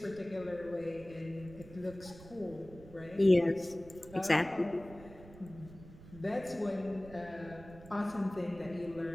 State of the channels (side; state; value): right; noise; rumble, 18 dB below the sound